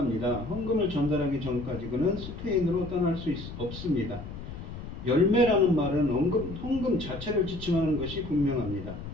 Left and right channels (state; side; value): noise; left; rumble, 10 dB below the sound